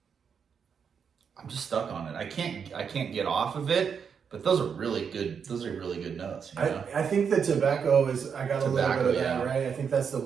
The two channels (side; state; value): left; quieter; 6.7 dB